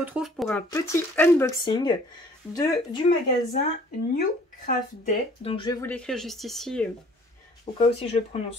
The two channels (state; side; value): normal; both; correlation 0.55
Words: pour un petit unboxing du magasin New Craft Day. Donc je vais vous l'écrire juste ici au cas où si je le